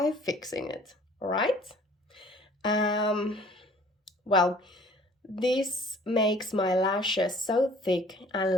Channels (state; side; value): normal; both; correlation 0.53